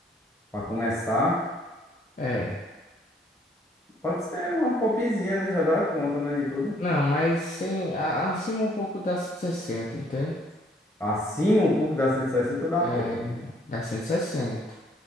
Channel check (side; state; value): both; normal; correlation 0.64